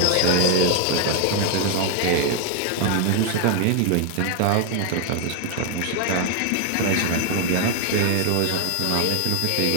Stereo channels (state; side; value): different; both; correlation 0.01